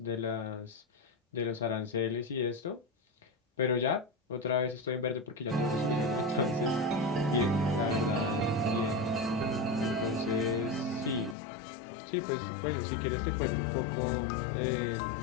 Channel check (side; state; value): right; drops out; at 11.4 s